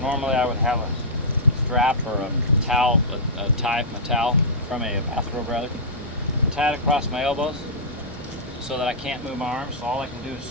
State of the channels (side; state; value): both; normal; correlation -0.13